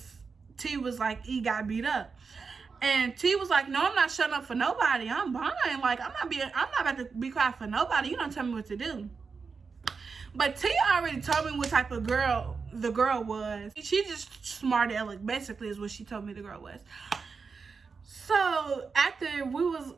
T was like, E got beat up. And T was like, no, I'm not shutting up for nobody. I'm fine. Like, I'm not about to be quiet for nobody. You don't tell me what to do. But T already told me what type of girl the girl was. She just smart aleck, basically, is what she told me the girl was. So after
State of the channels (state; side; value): quieter; left; 5.1 dB